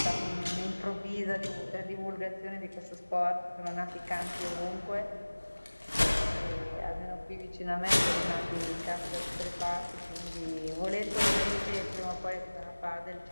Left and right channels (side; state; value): both; inverted; correlation -1.00